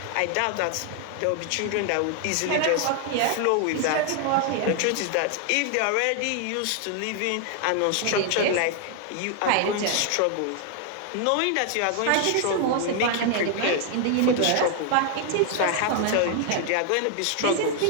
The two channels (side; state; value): both; different; correlation 0.00